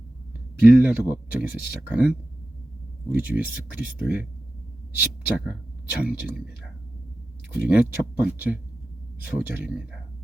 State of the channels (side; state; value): both; normal; correlation 0.93